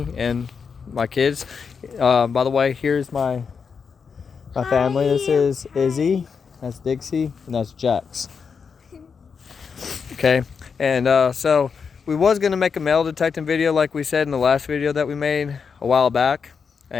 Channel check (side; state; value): right; quieter; 5.9 dB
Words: and my kids. By the way, here's my family. This is Izzy, that's Dixie, and that's Jax. Okay, and so we was gonna make a metal detecting video like we said in the last video that we made a while back,